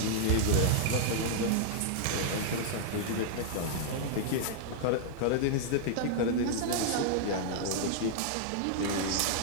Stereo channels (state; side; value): different; both; correlation -0.01